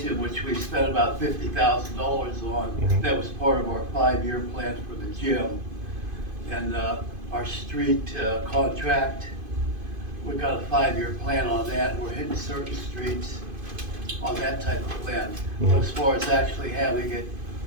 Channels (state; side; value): late; left; 2.5 ms